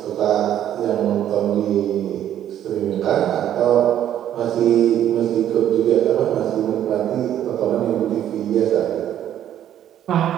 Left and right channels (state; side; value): quieter; left; 11.0 dB